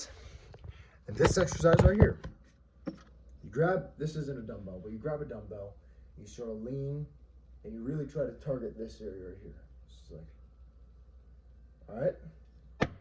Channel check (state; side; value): identical; both; correlation 1.00